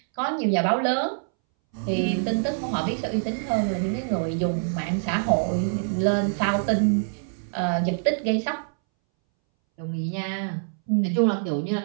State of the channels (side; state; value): left; silent; 62 dB below the other